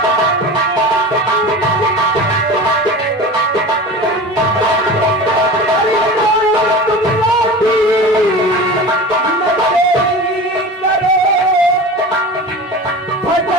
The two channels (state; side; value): normal; both; correlation 0.33